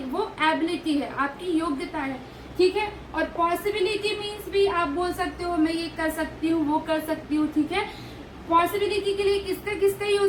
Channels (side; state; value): both; identical; correlation 1.00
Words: है, आपकी योग्यता है, ठीक है। और पॉसिबिलिटी मीन्स भी आप बोल सकते हो मैं ये कर सकती हूँ, वो कर सकती हूँ, ठीक है। पॉसिबिलिटी के लिए किसका